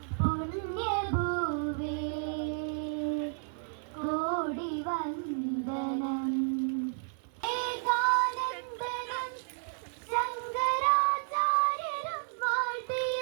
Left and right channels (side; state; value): left; silent; 56 dB below the other